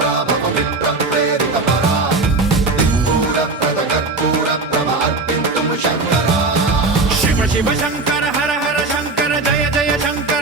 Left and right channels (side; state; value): left; quieter; 3.5 dB